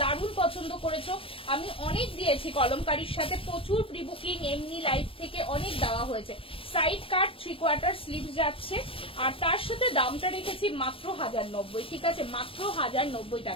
দারুণ পছন্দ করেছো। আমি অনেক দিয়েছি কলমকারীর সাথে, প্রচুর প্রি বুকিং এমনি লাইভ থেকে অনেক দেওয়া হয়েছে। সাইড কাট 3/4 স্লিভ যাচ্ছে, আর তার সাথে দামটা রেখেছি মাত্র 1090, ঠিক আছে, মাত্র 1090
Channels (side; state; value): right; late; 0.26 ms